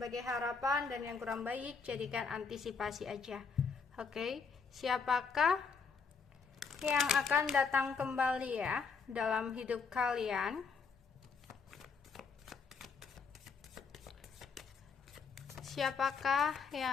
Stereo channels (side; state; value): right; quieter; 5.3 dB